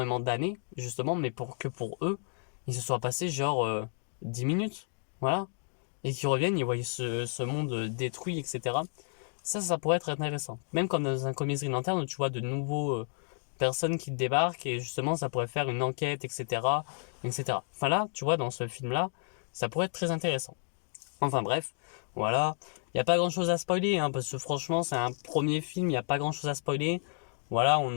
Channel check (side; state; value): right; silent; 57 dB below the other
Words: d'années, justement, mais pour eux, il se soit passé genre 10 minutes, voilà. Et qu'ils reviennent, ils voient ce monde détruit, etc. Ça pourrait être intéressant. Même comme dans un comics Green Lantern où tu vois de nouveaux personnes qui débarquent et justement ça pourrait faire une enquête, etc. etc. Enfin là, tu vois, dans ce film-là, ça pourrait être très intéressant. Enfin bref, voilà. Il n'y a pas grand-chose à spoiler, hein, parce que franchement, c'est un premier film, il n'y a pas grand-chose à spoiler. Voilà,